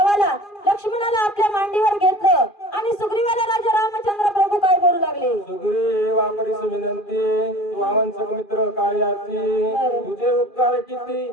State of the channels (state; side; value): late; right; 2.4 ms